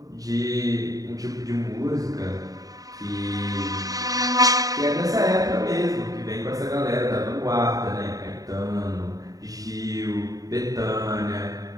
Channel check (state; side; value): late; left; 0.18 ms